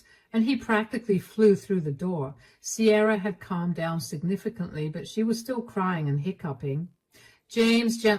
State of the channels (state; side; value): identical; both; correlation 1.00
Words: and he practically flew through the door. Sierra had calmed down significantly, but she was still crying and hiccuping. James